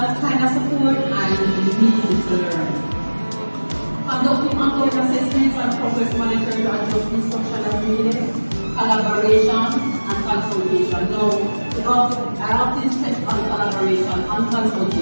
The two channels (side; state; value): both; inverted; correlation -1.00